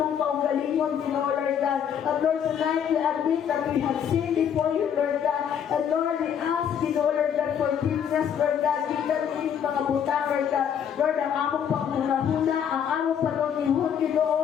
kaugalingon, Ginoo, Lord God. And Lord, tonight we admit that we have sinned before you, Lord God. And Lord, we ask, Ginoo, Lord God, forgiveness, Lord God. Gitan din mga butang, Lord God. Lord, ang among paghuna-huna, ang among panunihon,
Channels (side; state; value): right; quieter; 8.4 dB